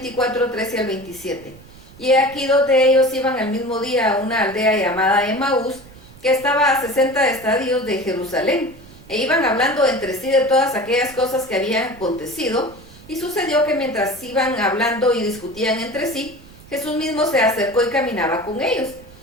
Y aquí 2 de ellos iban al mismo día a una aldea llamada Emaús, que estaba a 60 estadios de Jerusalén, e iban hablando entre sí de todas aquellas cosas que habían acontecido. Y sucedió que mientras iban hablando y discutían entre sí, Jesús mismo se acercó y caminaba con ellos.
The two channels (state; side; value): noise; right; rumble, 22 dB below the sound